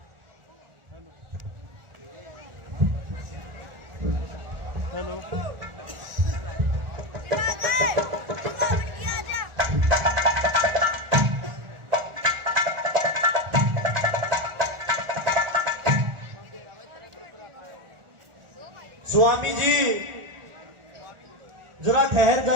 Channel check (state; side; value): late; left; 1.4 ms